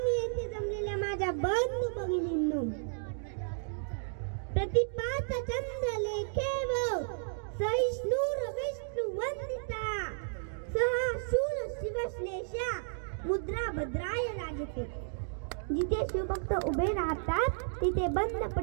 येथे जमलेल्या माझ्या बंधू भगिनींनो, प्रतिपाचा चंद्र लेखेव सहिष्णु विष्णु वंदिता सहा शूर शिवश्लेषा मुद्रा भद्राय राजते. जिथे शिवभक्त उभे राहतात तिथे बंद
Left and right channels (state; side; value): silent; left; digital silence